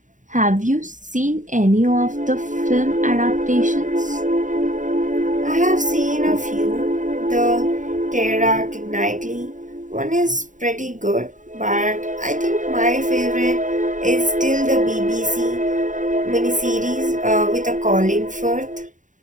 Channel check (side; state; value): left; late; 0.37 ms